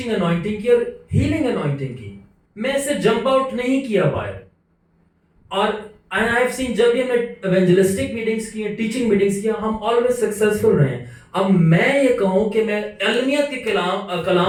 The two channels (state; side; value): identical; both; correlation 1.00